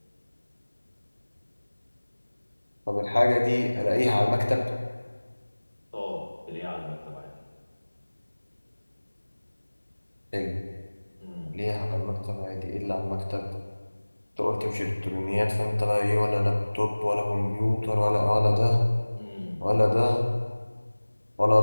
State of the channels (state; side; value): inverted; both; correlation -1.00